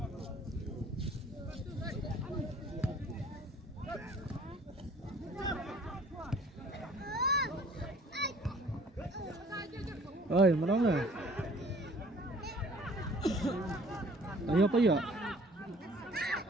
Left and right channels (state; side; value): normal; both; correlation 0.53